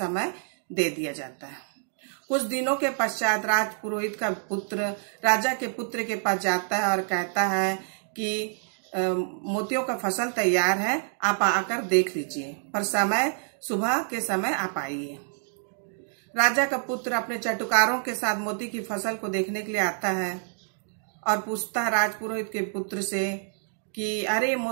दे दिया जाता है। कुछ दिनों के पश्चात राजपुरोहित का पुत्र राजा के पुत्र के पास जाता है और कहता है कि मोतियों का फसल तैयार है, आप आकर देख लीजिए, पर सुबह के समय आप आइए। राजा का पुत्र अपने चटुकारों के साथ मोती की फसल को देखने के लिए आता है और पूछता है राजपुरोहित के पुत्र से कि अरे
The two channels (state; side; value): silent; left; digital silence